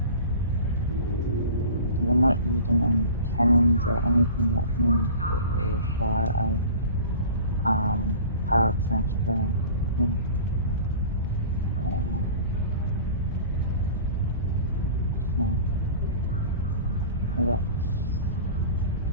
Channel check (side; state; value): both; inverted; correlation -0.40